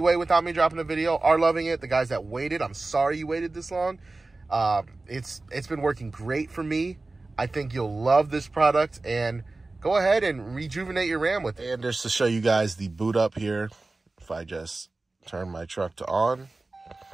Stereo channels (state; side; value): quieter; left; 3.3 dB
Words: without me dropping a video are loving it. The guys that waited, I'm sorry you waited this long. It's been working great for me. I think you'll love this product, and go ahead and rejuvenate your RAM with it. And just to show you guys the boot up here, if I just turn my truck to on.